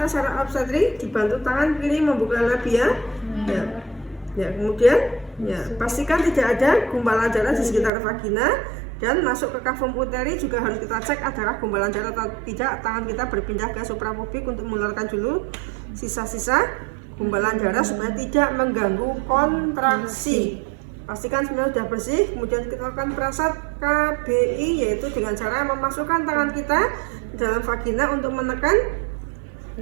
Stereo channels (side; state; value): left; drops out; at 7.9 s